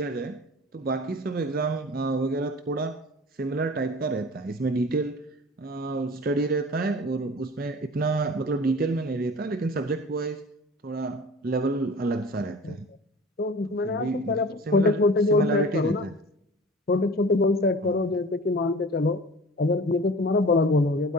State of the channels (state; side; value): normal; both; correlation 0.41